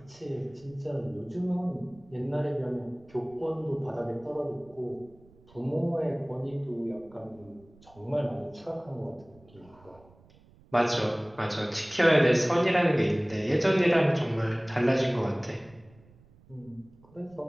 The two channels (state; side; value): noise; right; rumble, 26 dB below the sound